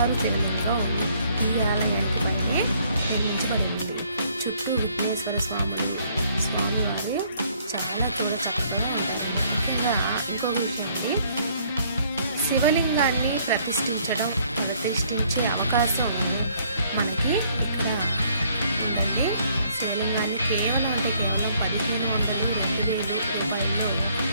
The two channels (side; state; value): both; inverted; correlation -0.64